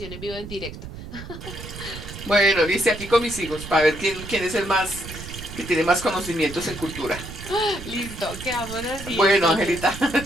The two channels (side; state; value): right; noise; rumble, 12 dB below the sound